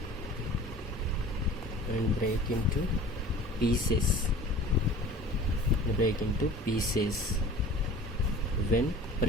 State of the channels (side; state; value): both; normal; correlation 0.42